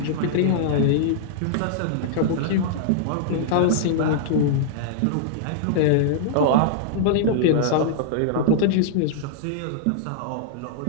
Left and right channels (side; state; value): both; different; correlation -0.01